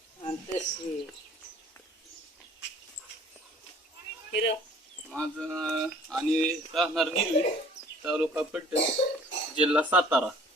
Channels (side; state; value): both; normal; correlation 0.53